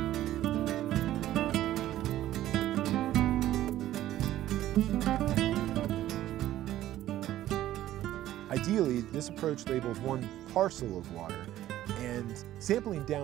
Ideally, this approach labels one parcel of water, and sampling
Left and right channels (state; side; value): quieter; left; 13.6 dB